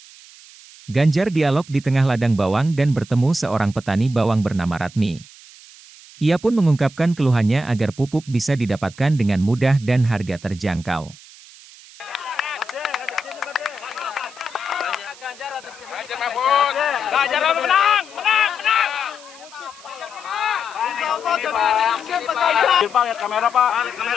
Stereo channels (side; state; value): right; noise; hiss, 21 dB below the sound